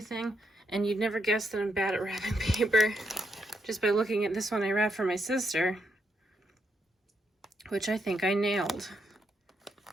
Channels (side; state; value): both; normal; correlation 0.79